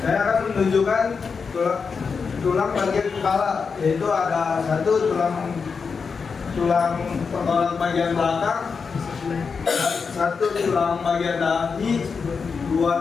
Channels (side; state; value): right; quieter; 5.4 dB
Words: Saya akan menunjukkan tulang bagian kepala, yaitu ada satu tulang tengkorak bagian belakang, satu tulang bagian dahi,